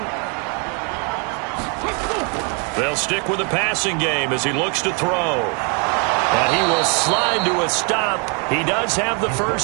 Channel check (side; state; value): left; quieter; 36.7 dB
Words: They'll stick with the passing game as he looks to throw. And he will slide to a stop. He does have the